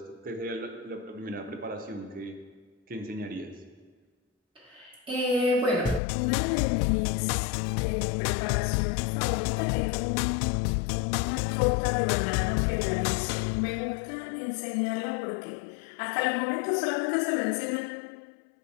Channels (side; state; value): right; drops out; at 6.0 s